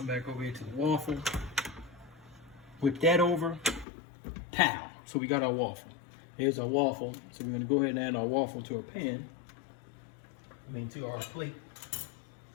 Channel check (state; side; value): drops out; right; at 3.9 s